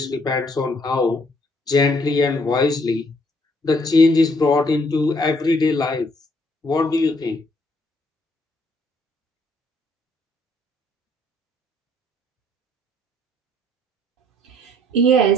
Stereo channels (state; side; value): normal; both; correlation 0.67